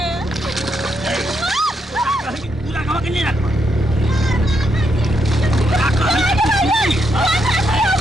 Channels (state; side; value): normal; both; correlation 0.79